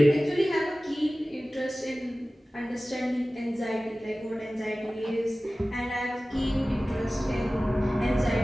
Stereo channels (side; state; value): both; normal; correlation 0.97